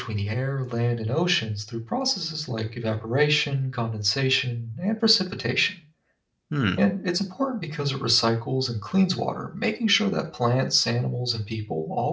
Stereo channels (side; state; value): both; identical; correlation 1.00